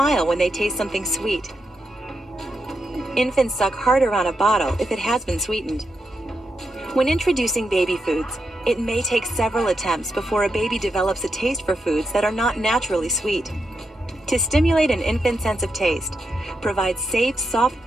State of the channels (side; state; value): both; normal; correlation 0.85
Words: when they taste something sweet. Infants suck harder on a bottle if it has been sweetened. When introducing baby foods, it may take several attempts before a baby develops a taste for foods that are not naturally sweet. To stimulate an infant's sense of taste, provide safe, soft